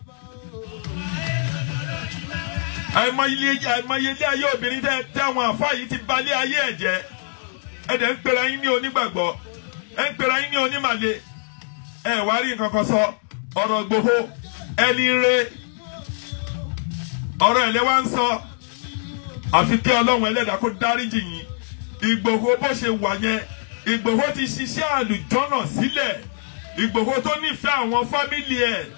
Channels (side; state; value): right; silent; 64 dB below the other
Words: Àìmọye ilé ayé obìnrin tẹ́ àwọn àfáà yìí ti balẹ̀ ayé ẹ̀ jẹ́. Ẹ̀dẹ̀ ń pera yín ní onígbàgbọ́. Ẹ ń pera yín ní onímàle. Ẹ wá rí nǹkan kan sọ. Ọ̀rọ̀ Ìgbòho ẹni rẹ, ọ̀rọ̀ ẹ̀lẹ́ wá ń sọ. Àfi kí Ọlọ́run ẹlẹ́dàá kó dáríjì yín. Ìgbòho bó ṣe wà yẹn, Ìgbòho ti ṣiṣẹ́ àlùjọ́nà sílẹ̀. Ìgbòho tó nífẹ̀ẹ́ àwọn fámìlì ẹ̀,